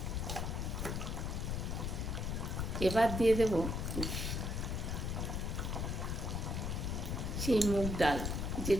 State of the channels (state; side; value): noise; left; rumble, 1 dB below the sound